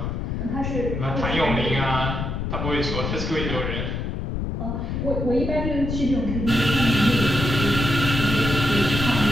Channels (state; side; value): noise; left; rumble, 3 dB below the sound